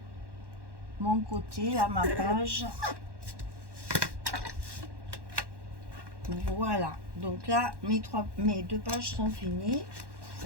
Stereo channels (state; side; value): late; left; 1.1 ms